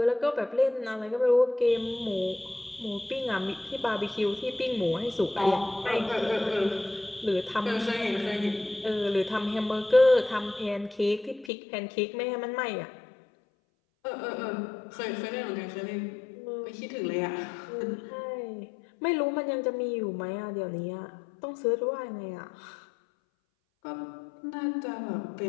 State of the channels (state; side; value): drops out; right; at 11.5 s